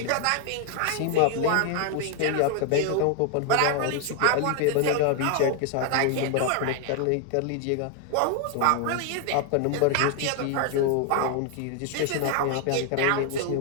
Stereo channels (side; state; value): both; different; correlation 0.00